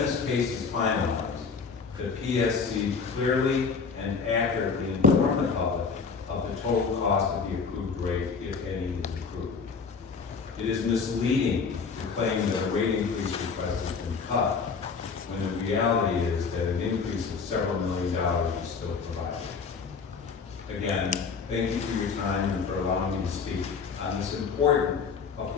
case is finalized, the PSC clearly and accurately inform the public of the total cost of the approved rate, if any is approved. It is misleading to claim that a rate increase request has been cut, when the reality is that an increase of several $million is still provided. Again, thank you for your time and for allowing me to speak on this important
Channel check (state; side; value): quieter; right; 5.4 dB